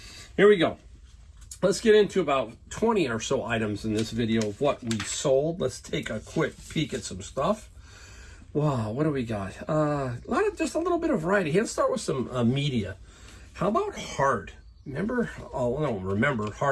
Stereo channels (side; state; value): both; identical; correlation 1.00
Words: here we go. Let's get into about 20 or so items in this video of what we sold. Let's take a quick peek at some stuff. Wow, what do we got? Just a little bit of variety. Let's start with some media. How about Heart? Remember? Oh, I don't remember